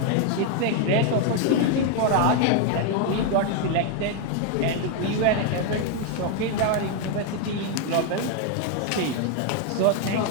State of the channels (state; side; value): different; both; correlation 0.01